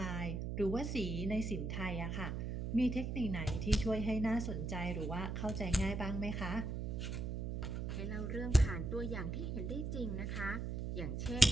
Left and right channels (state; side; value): noise; right; hum, 2 dB below the sound